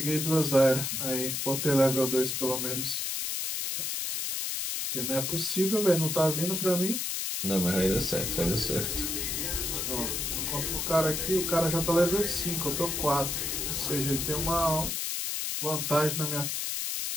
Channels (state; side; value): noise; left; hiss, 1 dB below the sound